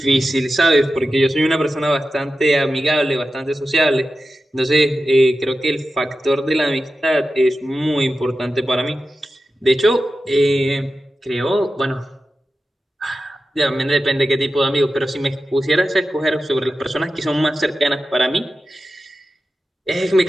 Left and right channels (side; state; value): both; normal; correlation 0.92